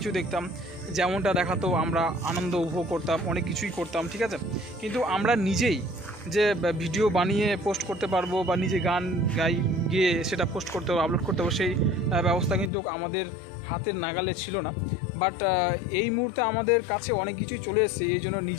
দেখতাম, যেমনটা দেখাতো আমরা আনন্দ উপভোগ করতাম, অনেক কিছুই করতাম, ঠিক আছে। কিন্তু আমরা নিজেই যে ভিডিও বানিয়ে পোস্ট করতে পারবো বা নিজে গান গিয়ে সেটা পোস্ট করতে হবে, আপলোড করতে হবে, সেই ব্যবস্থা কিন্তু আমাদের হাতের নাগালে ছিল না। বাট এই মুহূর্তে আমাদের কাছে অনেক কিছুই চলে এসেছে, এই জন্য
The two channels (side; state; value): right; drops out; at 12.7 s